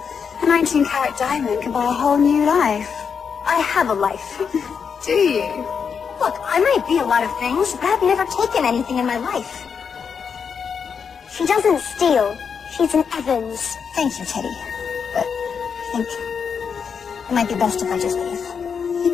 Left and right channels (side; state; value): right; quieter; 6.4 dB